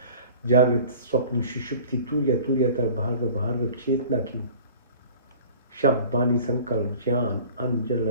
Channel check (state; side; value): inverted; both; correlation -0.45